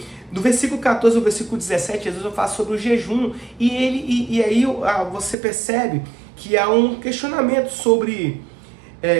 Do versículo 14 ao versículo 17, Jesus vai falar sobre o jejum, e aí você percebe que há um questionamento sobre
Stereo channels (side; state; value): left; drops out; at 5.4 s